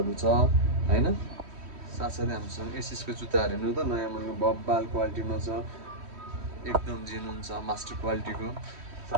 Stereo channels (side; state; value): left; late; 3.1 ms